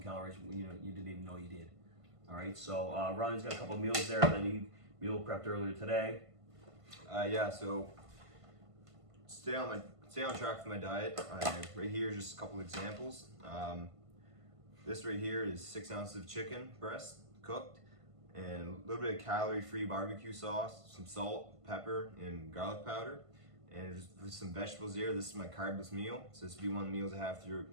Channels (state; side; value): late; left; 1.5 ms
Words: calories, you didn't even know you did. All right, so Ronnie's got a couple meals there that he meal prepped earlier today. Yeah, so stay on track for my diet. Right here is just a couple examples. This right here is 6 ounces of chicken breast cooked, and a little bit of calorie-free barbecue sauce, some salt, pepper, and garlic powder, and just some vegetables here. This is my carbless meal, so this will be one of the meals I have